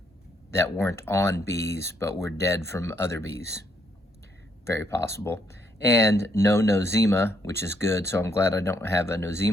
that weren't on bees but were dead from other bees. Very possible. And no nosema, which is good, so I'm glad I don't have a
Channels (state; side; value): normal; both; correlation 0.73